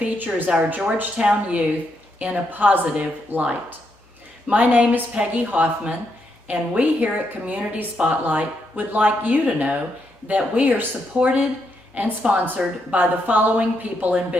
our Georgetown youth in a positive light. My name is Peggy Hoffman, and we here at Community Spotlight would like you to know that we are supported and sponsored by the following people and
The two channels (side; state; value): both; normal; correlation 0.79